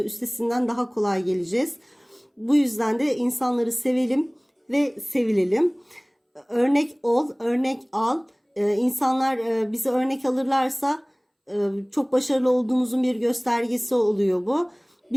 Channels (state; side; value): identical; both; correlation 1.00